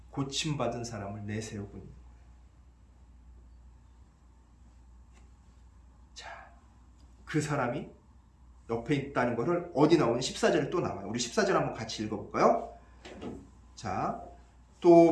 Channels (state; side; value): identical; both; correlation 1.00